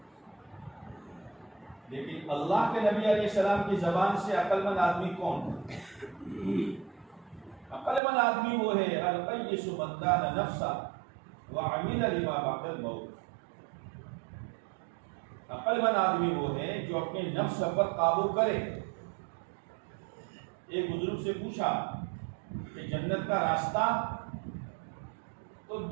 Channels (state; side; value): drops out; left; at 8.0 s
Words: لیکن اللہ کے نبی علیہ السلام کی زبان سے عقل مند آدمی کون؟ عقل مند آدمی وہ ہے القیس من دان نفسہ وعمل لما بعد الموت۔ عقل مند آدمی وہ ہے جو اپنے نفس پر قابو کرے۔ ایک بزرگ سے پوچھا کہ جنت کا راستہ، تو